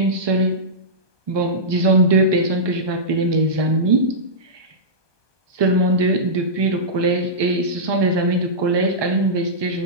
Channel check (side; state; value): left; late; 1.2 ms